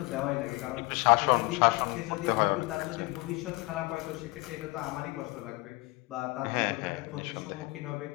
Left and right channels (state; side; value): quieter; right; 23.9 dB